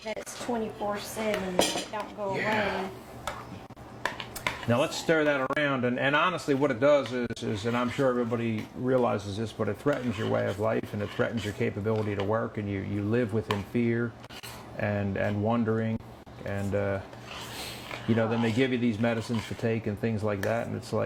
That's 24/7. That don't go away. Now let's stir that around, and honestly what it does is, and I'm sure everybody realizes this, but it threatens your way of life, and it threatens your capability to work, and you live within fear and wondering, and you know, then they give you these medicines to take and things like that, and it's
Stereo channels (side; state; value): both; identical; correlation 1.00